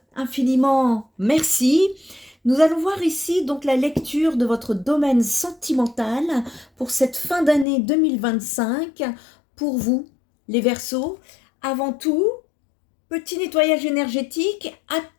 infiniment merci. Nous allons voir ici donc la lecture de votre domaine sentimental pour cette fin d'année 2025 pour vous, les Verseaux. Avant tout, petit nettoyage énergétique,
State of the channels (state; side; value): drops out; right; at 7.7 s